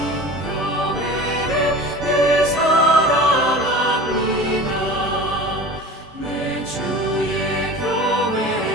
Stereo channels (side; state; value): both; normal; correlation 0.37